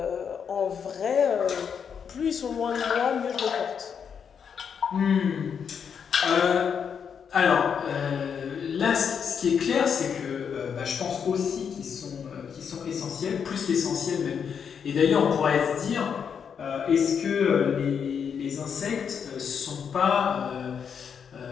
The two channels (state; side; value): quieter; right; 7.1 dB